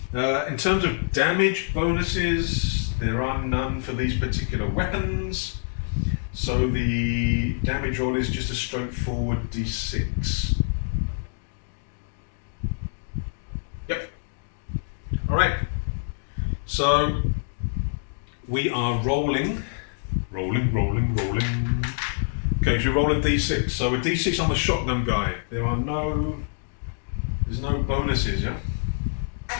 In terms of damage bonuses, there are none for these particular weapons. So the damage roll is just a straightforward d6. Yep. Alright. So we are rolling. Okay, so we roll a d6. So a d6 on the shotgun guy. There's no bonuses, yeah?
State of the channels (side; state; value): right; silent; digital silence